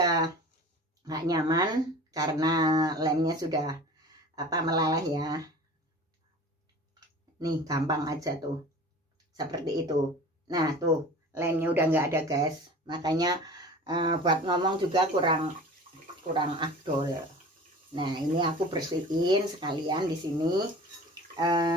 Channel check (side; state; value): both; normal; correlation 0.40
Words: nggak nyaman karena lemnya sudah melaleh ya. Nih gampang aja tuh seperti itu. Nah tuh lemnya udah nggak ada guys, makanya buat ngomong juga kurang afdol. Nah, ini aku bersihin sekalian di sini.